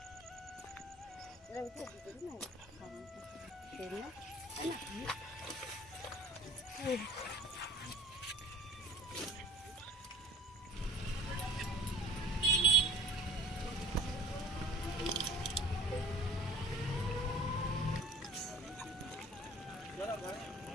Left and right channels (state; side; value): normal; both; correlation 0.44